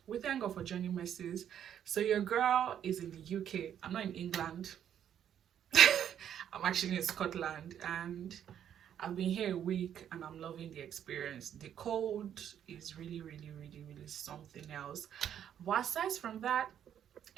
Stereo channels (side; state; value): left; quieter; 9.6 dB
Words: we thank God for journey messes. So your girl is in the UK. I'm not in England. I'm actually in Scotland, and I've been here a week and I'm loving the experience. The cold is really something else, but aside from that,